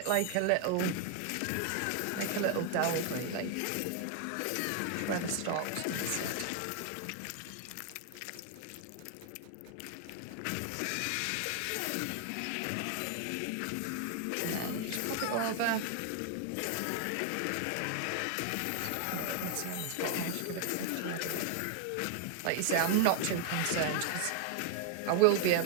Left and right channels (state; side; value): different; both; correlation 0.00